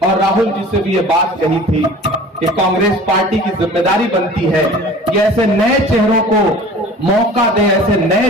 और राहुल जी से भी ये बात कही थी कि कांग्रेस पार्टी की जिम्मेदारी बनती है कि ऐसे नए चेहरों को मौका दे, ऐसे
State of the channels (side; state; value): both; normal; correlation 0.43